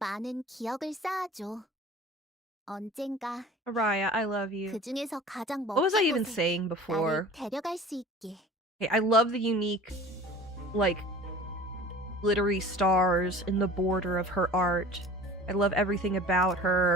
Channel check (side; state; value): both; normal; correlation 0.42